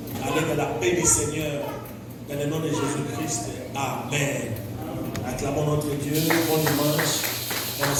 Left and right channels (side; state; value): both; identical; correlation 1.00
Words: Allez dans la paix du Seigneur, dans le nom de Jésus-Christ. Amen. Acclamons notre Dieu. Bon dimanche. On